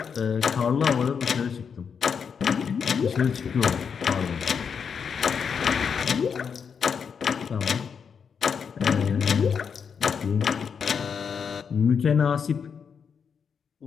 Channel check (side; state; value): right; quieter; 6.6 dB